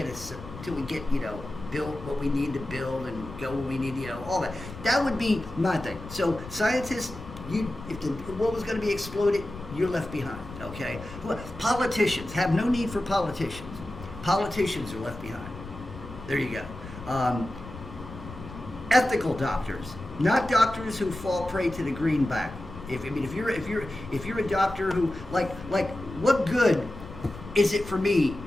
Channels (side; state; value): left; noise; rumble, 14 dB below the sound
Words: built what we need to build and go where we need, all that. That would be my thing. So scientists. If the world was going to be exploded, you're left behind, okay? Politicians have no need for politicians. Politicians are left behind. There you go. Ethical doctors, not doctors who fall prey to the greenback. If you're a doctor who like what good is it for me